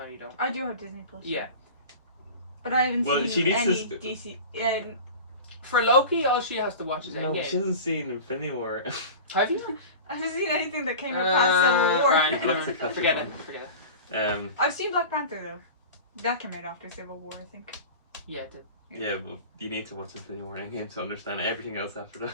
you don't. I do have Disney Plus. Yeah. But I haven't Well, she seen needs any to DC. For Loki, all she has to watch is No, Endgame. she hasn't seen Infinity War. Have you? I haven't seen anything that came out past Civil War. Right, Let's right. catch Forget up it. on Forget it. I've seen Black Panther though. That came out after Civil War, I think. Yeah, it did. Yeah, but you need to watch Infinity War Endgame to understand everything else after that.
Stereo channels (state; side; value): inverted; both; correlation -0.34